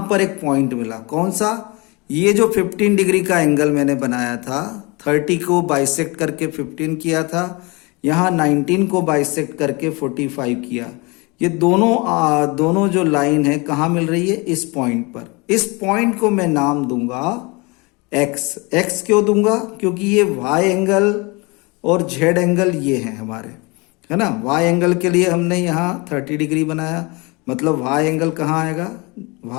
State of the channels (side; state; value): right; quieter; 27.3 dB